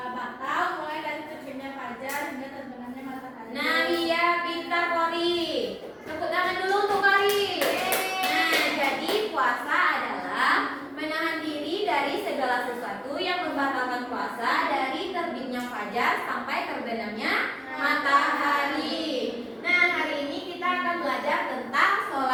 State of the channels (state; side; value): identical; both; correlation 1.00